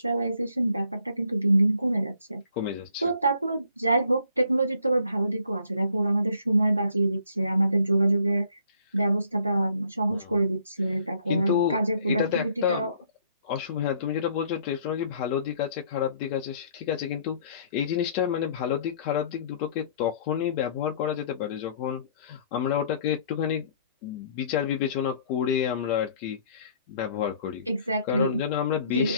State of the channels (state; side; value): inverted; both; correlation -0.60